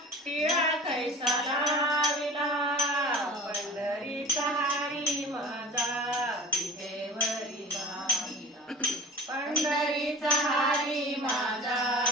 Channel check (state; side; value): normal; both; correlation 0.38